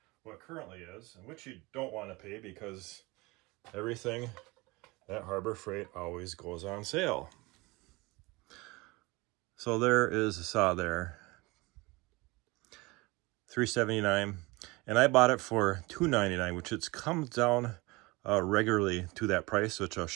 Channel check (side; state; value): left; quieter; 23.7 dB